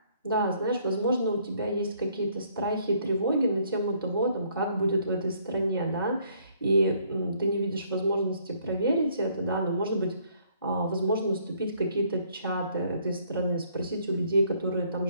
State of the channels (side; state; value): both; inverted; correlation -0.65